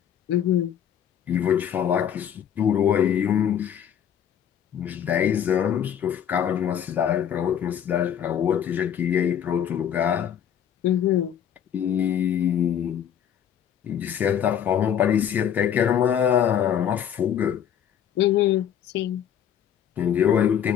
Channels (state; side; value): quieter; right; 9.2 dB